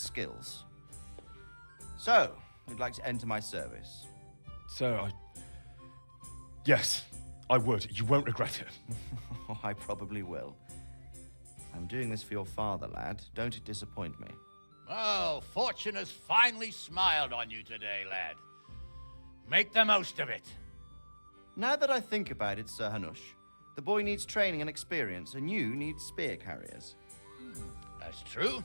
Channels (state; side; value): inverted; both; correlation -1.00